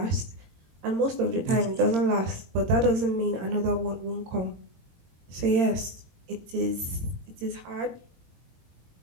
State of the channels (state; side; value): late; left; 22 ms